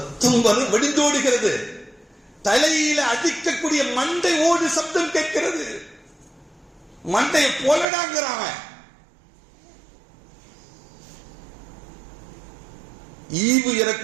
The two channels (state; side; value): drops out; left; at 7.9 s